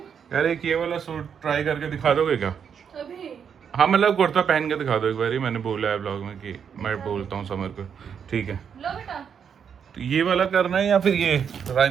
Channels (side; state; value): left; quieter; 7.4 dB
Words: यार एक ये वाला सूट ट्राई करके दिखा दोगे क्या? अभी हाँ मतलब कुर्ता पहन के दिखा दो एक बार, मैंने बोला है ब्लॉग में कि मैं बोलता हूँ समर को, ठीक है। लो बेटा, तो ये वाला करना है या फिर ये